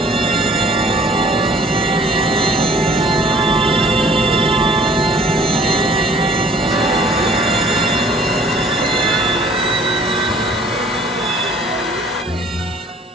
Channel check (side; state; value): both; normal; correlation 0.55